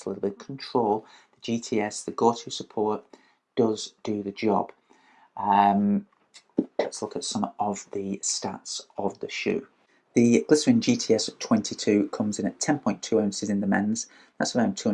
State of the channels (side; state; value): both; identical; correlation 1.00